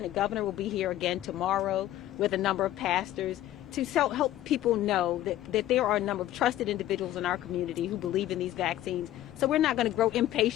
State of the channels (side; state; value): right; quieter; 13.6 dB